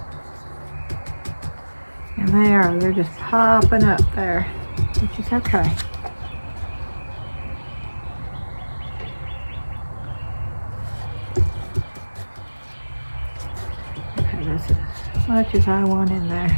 And they're just popping up there, which is okay. Okay, that's as much as I want in there.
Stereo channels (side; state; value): both; inverted; correlation -1.00